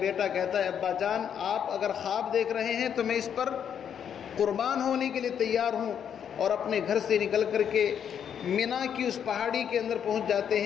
کہتا ہے ابا جان، آپ اگر خواب دیکھ رہے ہیں تو میں اس پر قربان ہونے کے لیے تیار ہوں، اور اپنے گھر سے نکل کر کے مینا کی اس پہاڑی کے اندر پہنچ جاتے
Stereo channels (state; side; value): quieter; right; 8.4 dB